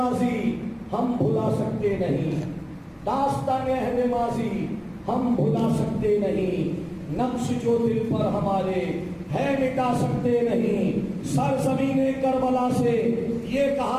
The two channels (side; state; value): both; identical; correlation 1.00